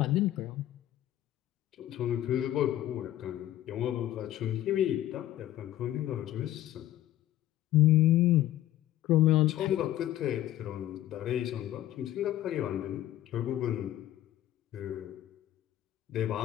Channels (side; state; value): right; quieter; 13.5 dB